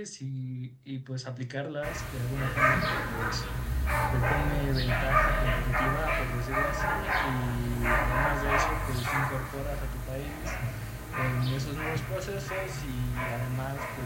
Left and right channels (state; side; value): identical; both; correlation 1.00